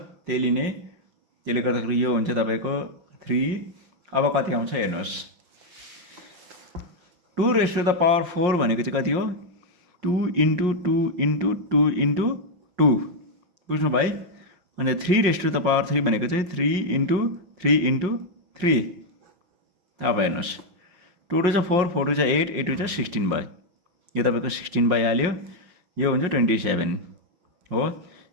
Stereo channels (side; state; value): left; late; 5.6 ms